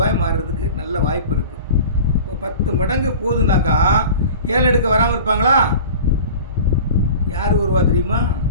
மாறுறதுக்கு நல்ல வாய்ப்பு இருக்குது. இப்போ 10 மடங்கு போகுதுனாக்கா ஏலம் எடுக்க வராமல் இருப்பாங்களா? யார் வருவா தெரியுமா?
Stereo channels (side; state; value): both; inverted; correlation -0.38